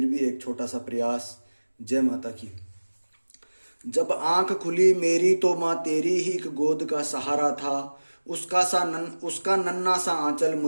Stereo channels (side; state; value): both; inverted; correlation -1.00